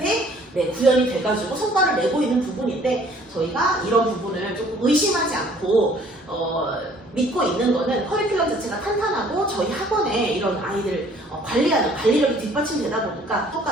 구현이 돼가지고 성과를 내고 있는 부분인데 저희가 이런 부분을 조금 의심하지 않고 믿고 있는 거는 커리큘럼 자체가 탄탄하고 저희 학원에 이런 아이들 관리하는 관리력이 뒷받침되다 보니까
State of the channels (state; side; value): normal; both; correlation 0.57